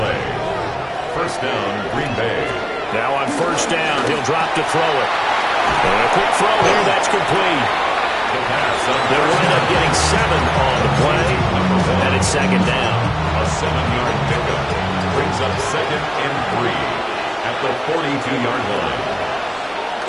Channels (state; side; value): identical; both; correlation 1.00